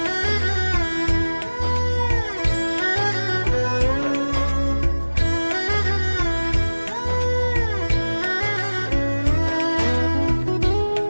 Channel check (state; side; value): inverted; both; correlation -1.00